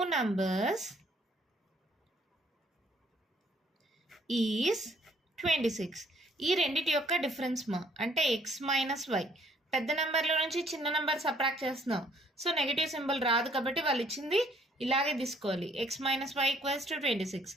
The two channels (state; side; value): normal; both; correlation 0.63